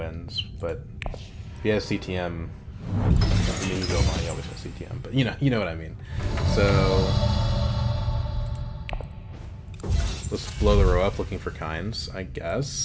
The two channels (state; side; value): identical; both; correlation 1.00